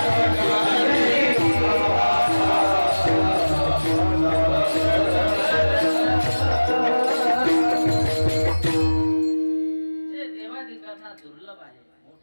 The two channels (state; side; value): inverted; both; correlation -1.00